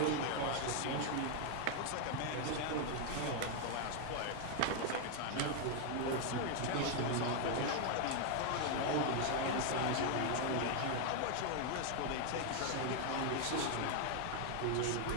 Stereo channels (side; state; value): both; different; correlation 0.00